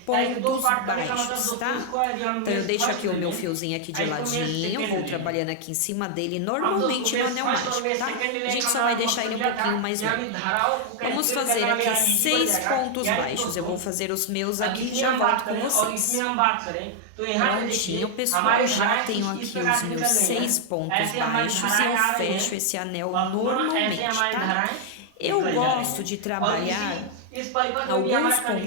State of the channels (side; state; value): both; different; correlation 0.00